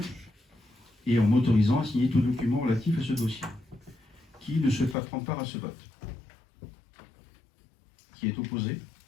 et en m'autorisant à signer tout document relatif à ce dossier. Qui ne souhaite pas prendre part à ce vote? Qui est opposé?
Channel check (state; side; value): drops out; right; at 5.0 s